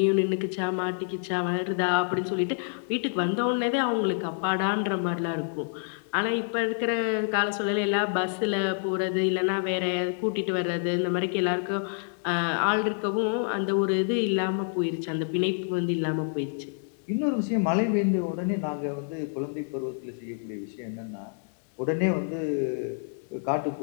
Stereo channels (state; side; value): silent; right; digital silence